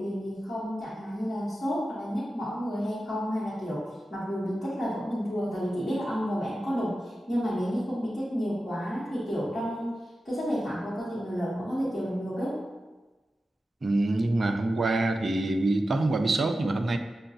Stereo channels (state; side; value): normal; both; correlation 0.92